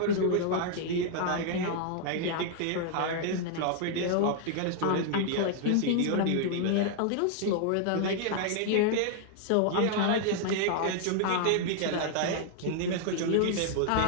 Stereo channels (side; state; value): both; different; correlation 0.00